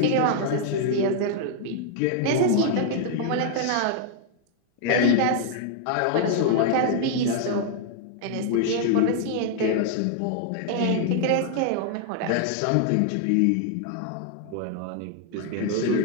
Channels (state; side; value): different; both; correlation 0.00